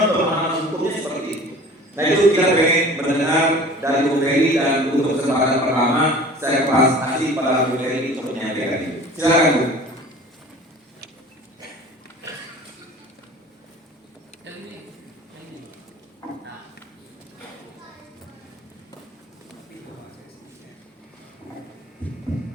pemahaman hukumnya seperti itu? Nah, itu kita pengen mendengar dari Bung Ferry, dan untuk kesempatan pertama saya kasih pada Bung Ferry untuk menyampaikan ini. Silakan Bu.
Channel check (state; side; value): normal; both; correlation 0.43